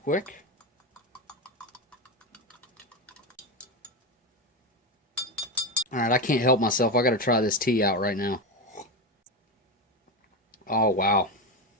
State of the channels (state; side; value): normal; both; correlation 0.15